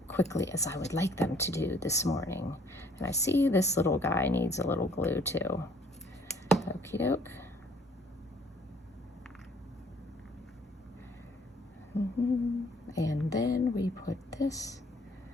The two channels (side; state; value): both; normal; correlation 0.60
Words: quickly as I would like them to do this morning. And I see this little guy needs a little glue too. Okie doke. And then we put this